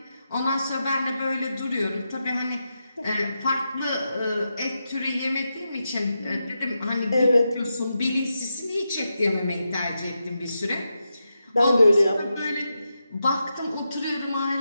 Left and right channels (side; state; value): both; inverted; correlation -0.87